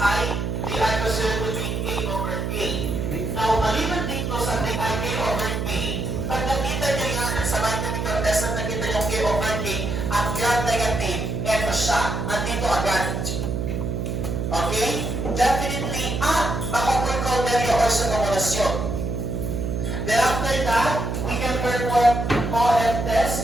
they are considered to be K over K. Now, maliban dito sa K over K, pag nakita nyo yan sa biochemical test na nakita yung K over K at gram-negative, eto siya, andito agad. Okay? Definitely, baka precautionary or sa kumulasyon. Then after that, we can perform OF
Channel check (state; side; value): noise; right; hum, 2 dB below the sound